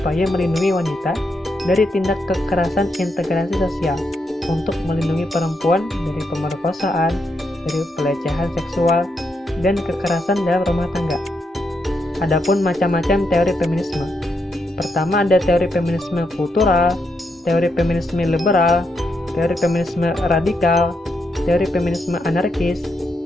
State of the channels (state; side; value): normal; both; correlation 0.81